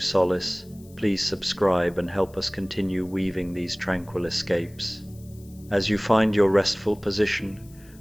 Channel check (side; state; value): left; noise; hiss, 26 dB below the sound